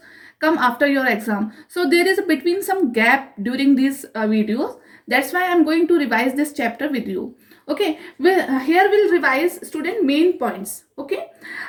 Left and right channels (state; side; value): identical; both; correlation 1.00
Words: come after your exam. So there is between some gap during these videos. That's why I'm going to revise this chapter with you. Okay, here we'll revise student main points. Okay,